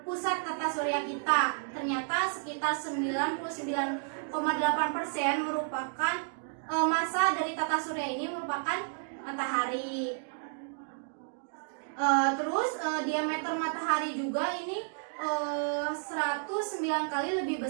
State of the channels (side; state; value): left; silent; digital silence